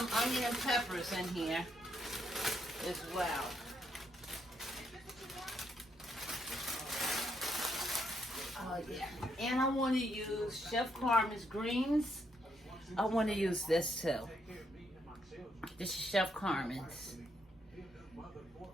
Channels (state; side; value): normal; both; correlation 0.76